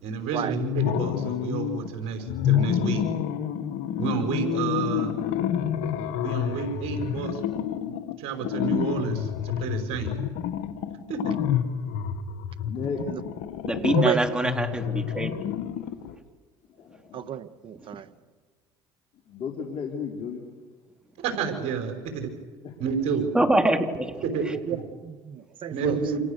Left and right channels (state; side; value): normal; both; correlation 0.39